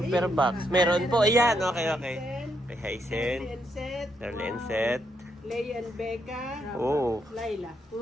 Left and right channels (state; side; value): normal; both; correlation 0.78